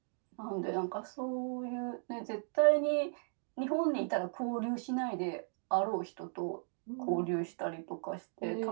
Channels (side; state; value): left; silent; 54 dB below the other